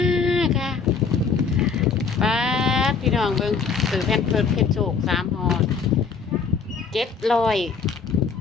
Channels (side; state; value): right; quieter; 5.5 dB